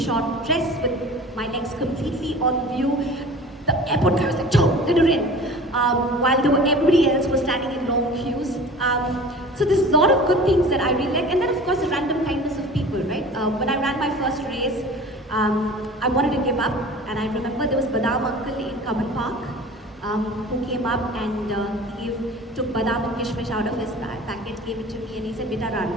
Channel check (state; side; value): normal; both; correlation 0.41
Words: dress with my legs completely on view. The airport guy was like, "Joe, let her in," while everybody else was standing in long queues. So there's a lot of good things that I really like, and then of course the random kindness of people, right? When I ran my first race, I wanted to give up, and I remember there was Badam uncle in Kaman Park, who came up and he took badam and kishmish out of his packet, gave it to me, and he said, "Beta, run."